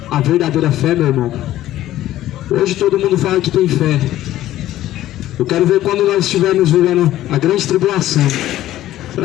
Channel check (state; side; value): quieter; right; 14.0 dB